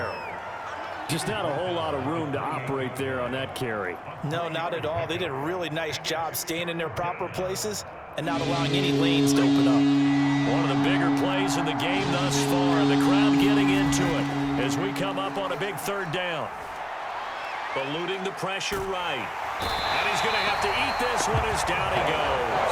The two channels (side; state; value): both; identical; correlation 1.00